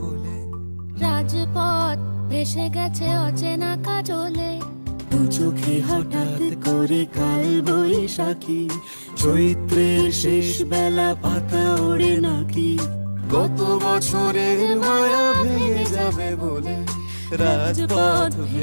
বলে, রাজপথ ভেসে গেছে অচেনা কাজলে। দু চোখে হঠাৎ করে কাল বৈশাখী, চৈত্রের শেষ বেলা পাতা ওড়ে নাকি, গত বছরের মায়া ভেঙে যাবে বলে, রাজপথ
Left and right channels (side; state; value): both; inverted; correlation -1.00